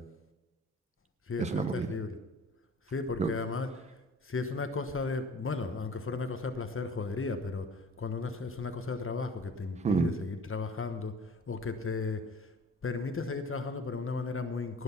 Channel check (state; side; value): normal; both; correlation 0.47